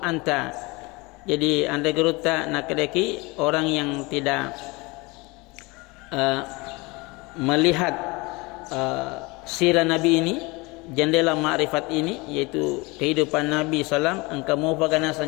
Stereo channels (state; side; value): quieter; right; 25.0 dB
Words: Jadi anda geruta nakadeki orang yang tidak melihat sirah Nabi ini, jendela ma'rifat ini, yaitu kehidupan Nabi SAW, engkau mau bagaimana